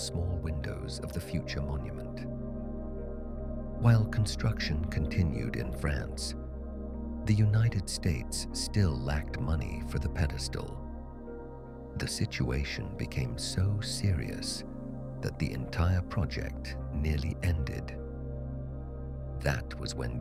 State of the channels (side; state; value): both; identical; correlation 1.00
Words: windows of the future monument. While construction continued in France, the United States still lacked money for the pedestal. The situation became so serious that the entire project nearly ended. That was when